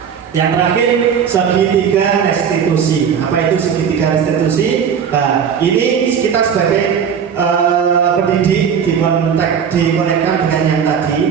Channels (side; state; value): left; quieter; 7.5 dB